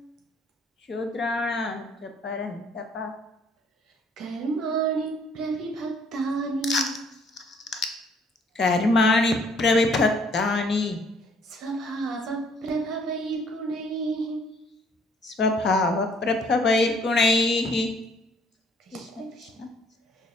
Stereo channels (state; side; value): normal; both; correlation 0.62